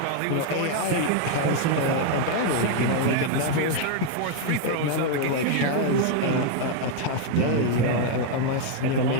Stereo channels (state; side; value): different; both; correlation 0.00